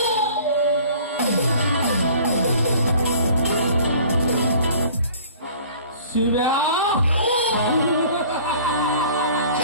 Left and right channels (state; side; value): inverted; both; correlation -0.49